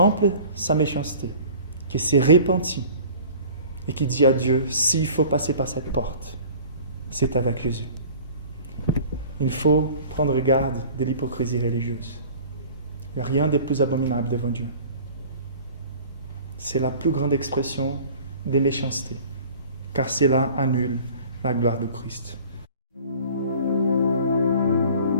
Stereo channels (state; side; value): inverted; both; correlation -0.45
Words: sa méchanceté, qui s'est repentie et qui dit à Dieu, s'il faut passer par cette porte, c'est avec Jésus. Il faut prendre garde de l'hypocrisie religieuse. Il n'y a rien de plus abominable devant Dieu. C'est la plus grande expression de méchanceté, car cela annule la gloire de Christ.